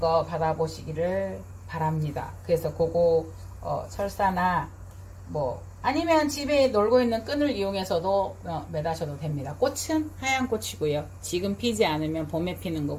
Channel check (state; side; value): identical; both; correlation 1.00